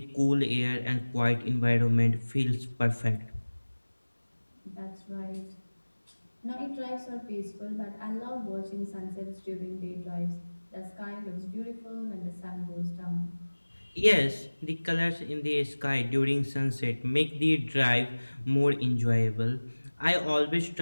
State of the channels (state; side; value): inverted; both; correlation -1.00